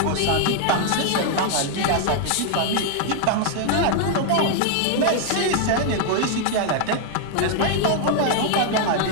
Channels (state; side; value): different; both; correlation 0.00